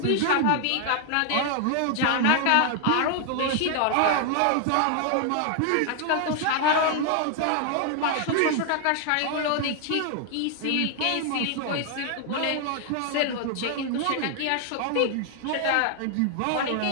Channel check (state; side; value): different; both; correlation 0.00